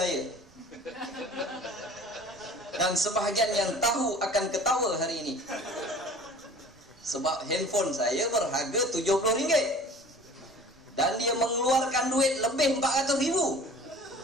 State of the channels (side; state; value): right; noise; rumble, 28 dB below the sound